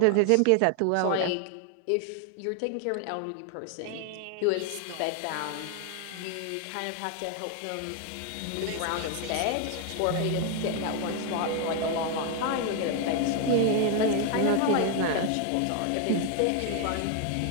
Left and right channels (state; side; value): different; both; correlation 0.01